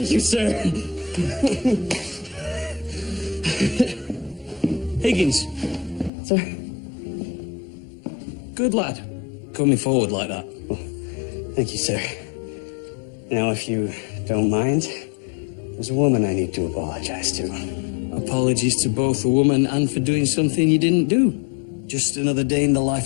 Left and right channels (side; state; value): right; drops out; at 6.1 s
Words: you, sir. Higgins. Sir? Good lad. Coming forward like that. Well, thank you, sir. Now, if you don't mind, there's a woman I need to apologize to. Apologies to both the woman and for doing something you didn't do. Just another day in the